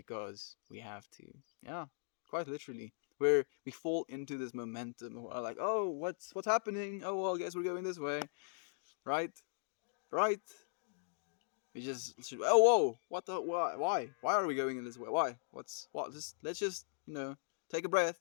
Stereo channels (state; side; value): silent; right; digital silence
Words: we have to. Yeah, quite literally. Where we fall into this momentum. We're like, oh, what's happening? Oh, well, I guess we're going this way, right? Right? We just oh whoa, what the why are we going in this way? Why? What? Just let's just take a breath,